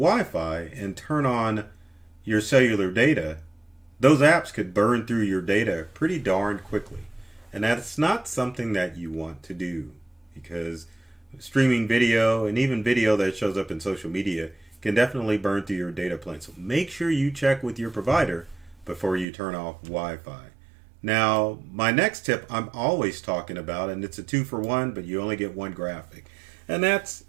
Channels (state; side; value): drops out; left; at 19.2 s